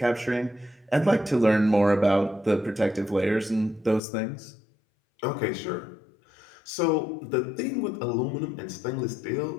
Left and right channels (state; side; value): drops out; right; at 4.0 s